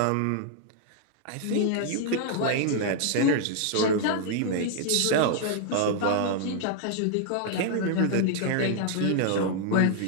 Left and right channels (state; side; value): different; both; correlation -0.01